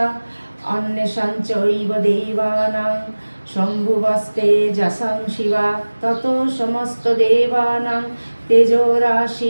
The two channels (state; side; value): inverted; both; correlation -1.00